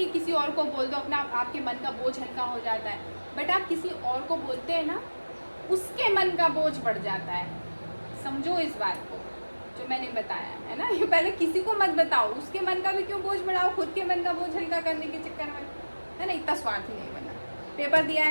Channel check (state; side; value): inverted; both; correlation -1.00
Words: किसी और को बोल दो अपना, आपके मन का बोझ हल्का हो जाता है, बट आप किसी और को बोलते हैं ना, उसके मन का बोझ बढ़ जाता है। समझो इस बात को जो मैंने बताया है ना। ये पहले किसी को मत बताओ, उसके मन का भी क्यों बोझ बढ़ाओ, खुद के मन का बोझ हल्का करने के चक्कर में, है ना। इतना स्वार्थी नहीं बनना। पेपर दिया